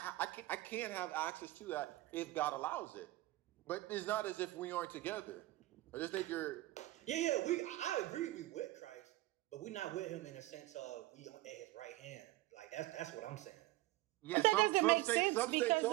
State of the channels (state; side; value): quieter; left; 17.8 dB